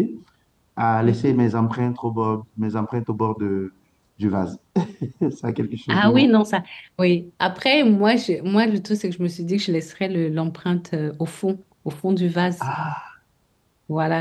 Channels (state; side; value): identical; both; correlation 1.00